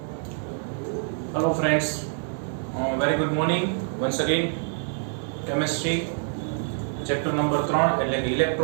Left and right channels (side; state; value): left; silent; 60 dB below the other